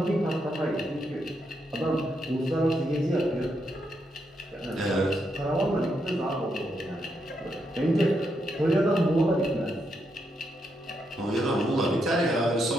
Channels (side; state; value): both; normal; correlation 0.81